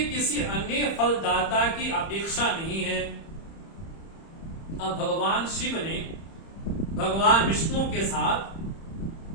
किसी अन्य फलदाता की अपेक्षा नहीं है। अब भगवान शिव ने भगवान विष्णु के साथ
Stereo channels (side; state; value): right; late; 30 ms